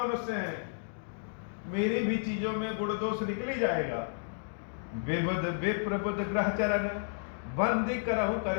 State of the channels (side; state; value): right; silent; digital silence